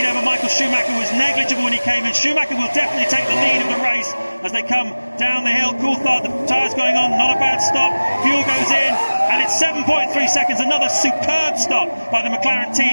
over Michael Schumacher was negligible when he came in. Schumacher will definitely take the lead of the race as they come down the hill. Coulthard, the tyres going on, not a bad stop. Fuel goes in, and it's 7.3 seconds. Another superb stop by the McLaren team.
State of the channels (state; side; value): inverted; both; correlation -1.00